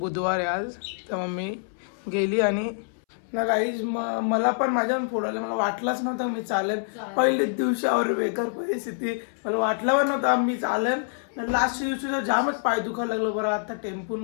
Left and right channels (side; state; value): right; silent; 61 dB below the other